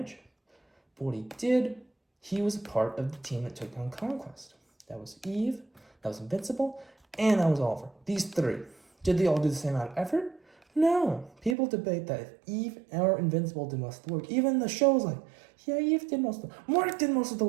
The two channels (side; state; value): left; drops out; at 11.6 s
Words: But what he did, he was a part of the team that took down Conquest. That was Eve, that was Invincible, and that was Oliver. These three. Did they all do the same amount of effort? No. People debate that if Eve or Invincible did most of the work. Even the show's like, yeah, Eve did most of the work. Mark did most of the